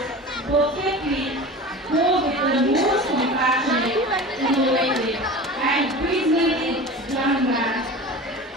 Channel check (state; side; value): normal; both; correlation 0.34